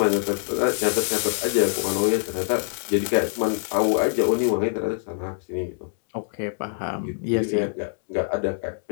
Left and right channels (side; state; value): right; silent; digital silence